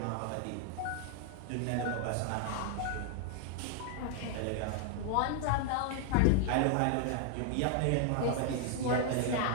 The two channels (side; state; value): both; different; correlation 0.00